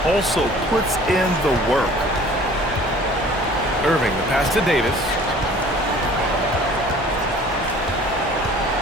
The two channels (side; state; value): both; normal; correlation 0.49